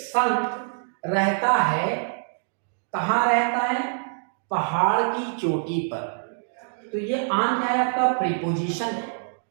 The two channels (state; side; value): silent; left; digital silence